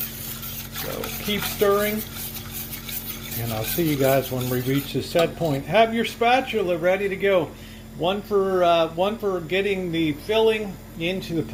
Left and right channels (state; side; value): identical; both; correlation 1.00